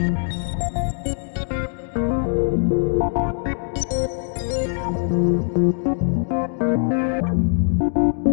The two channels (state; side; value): silent; right; 63 dB below the other